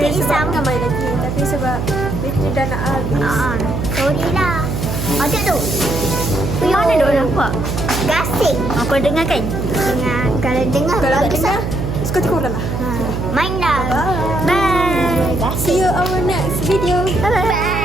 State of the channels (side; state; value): right; noise; hum, 3 dB below the sound